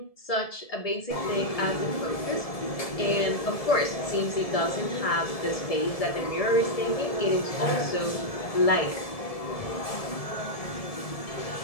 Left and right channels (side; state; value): right; late; 1.7 ms